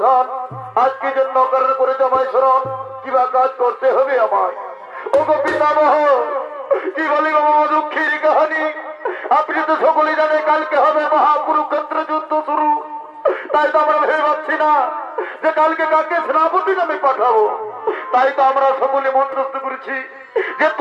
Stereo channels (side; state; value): both; identical; correlation 1.00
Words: আজকে জন্য কারণ করেছে আমায় স্মরণ, কিবা কাজ করতে হবে আমায়। ও গো পিতামহ, কি বলি বাবা দুঃখের কাহিনী। আপনি তো সকলেই জানে কালকে হবে মহাকুরুক্ষেত্র যুদ্ধ শুরু। তাই তো আমরা ভেবে পাচ্ছি না যে কালকে কাকে সেনাপতি নামে পাঠাবো। তাই তো আমরা সকলে মনস্থ করেছি যে